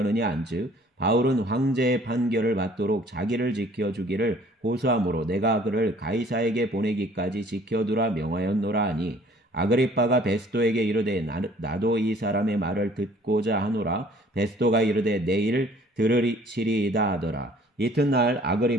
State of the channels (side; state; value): both; normal; correlation 0.55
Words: 한즉 바울은 황제의 판결을 받도록 자기를 지켜주기를 고소하므로 내가 그를 가이사에게 보내기까지 지켜두라 명하였노라 하니 아그리빠가 베스도에게 이르되 나도 이 사람의 말을 듣고자 하노라. 베스도가 이르되 내일 들으시리이다 하더라. 이튿날